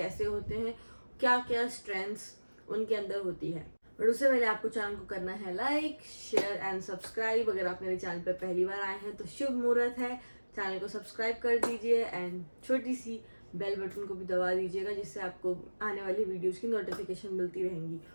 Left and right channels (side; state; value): both; inverted; correlation -1.00